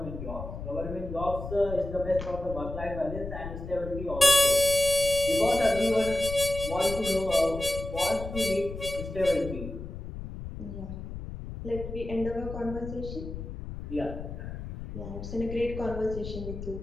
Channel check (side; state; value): left; noise; rumble, 9 dB below the sound